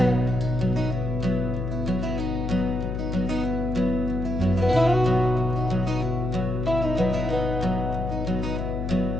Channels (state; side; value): noise; left; hum, 3 dB below the sound